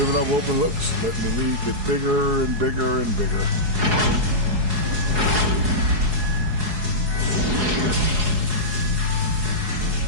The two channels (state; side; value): late; left; 4.7 ms